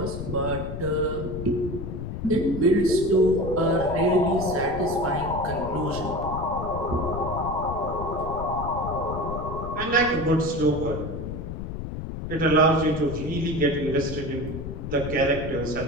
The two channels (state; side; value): noise; left; rumble, 7 dB below the sound